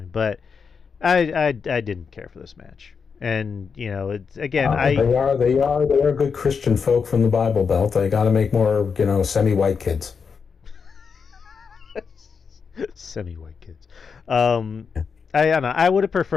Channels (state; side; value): quieter; right; 5.8 dB